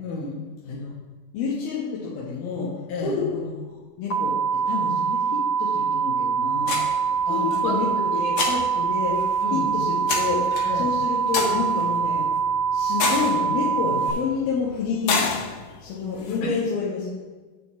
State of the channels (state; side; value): late; right; 12 ms